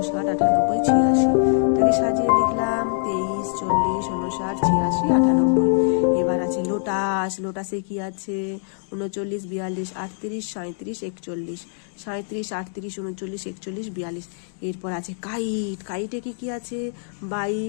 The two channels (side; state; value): right; silent; digital silence